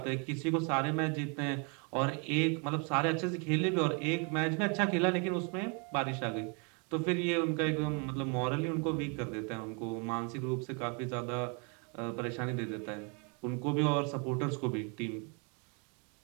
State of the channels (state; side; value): quieter; left; 35.1 dB